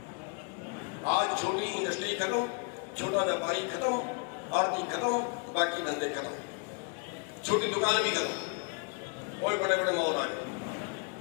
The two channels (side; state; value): right; quieter; 35.2 dB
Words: आज छोटी इंडस्ट्री खत्म, छोटा व्यापारी खत्म, आर्थिक खत्म, बाकी धंधे खत्म, छोटी दुकान भी खत्म, कोई बड़े बड़े मॉल आ गए।